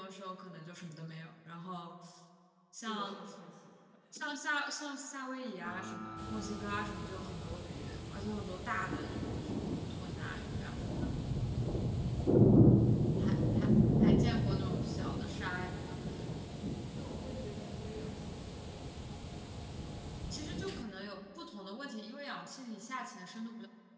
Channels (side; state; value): both; identical; correlation 1.00